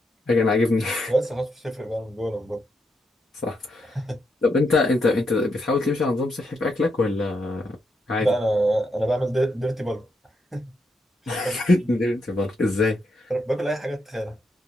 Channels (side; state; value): both; normal; correlation 0.81